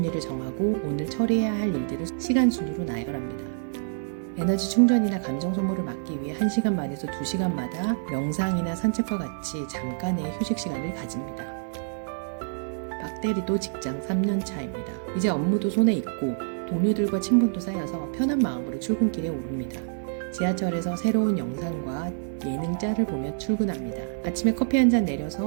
정하고 오늘 처리해야 할 일들을 시간 순으로 나열합니다. 에너지 충전이나 감정 소모를 막기 위해 1시간 반에서 2시간마다 명상이나 산책과 같이 잠깐의 휴식 시간을 가집니다. 박대리도 직장 3년 차입니다. 이제 업무도 손에 있고 동료들과 친분도 쌓여서 편한 마음으로 출근길에 오릅니다. 지하철에서 새로운 영상과 예능 짤을 보며 출근합니다. 아침에 커피 한 잔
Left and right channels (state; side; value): silent; left; digital silence